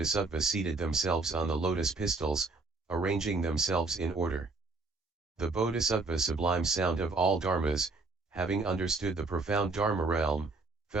seated themselves on the lotus pistils, arranging themselves in order. The Bodhisattva Sublime Sound of all Dharmas, having understood the profound Dharma realm,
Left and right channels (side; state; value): left; quieter; 3.6 dB